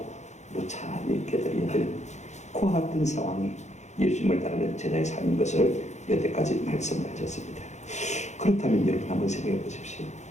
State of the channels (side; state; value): right; late; 0.33 ms